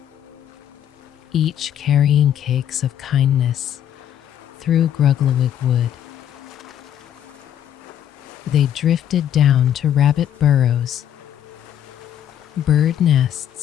each carrying cakes of kindness through Grugglewig wood. They drifted down to rabbit burrows, bird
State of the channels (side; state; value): right; quieter; 10.3 dB